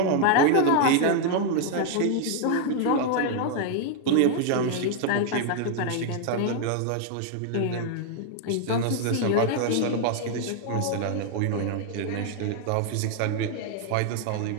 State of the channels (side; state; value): both; different; correlation 0.00